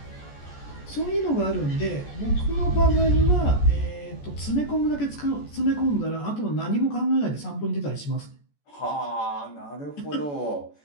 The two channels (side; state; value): right; late; 14 ms